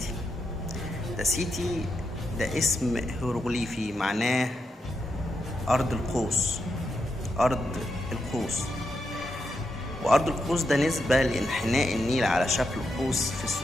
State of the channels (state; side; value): normal; both; correlation 0.85